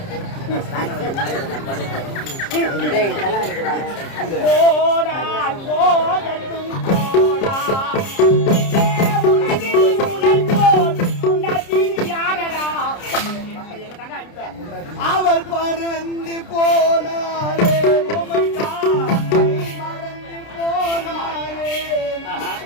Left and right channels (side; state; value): right; late; 30 ms